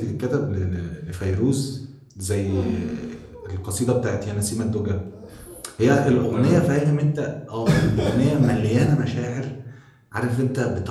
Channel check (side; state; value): both; identical; correlation 1.00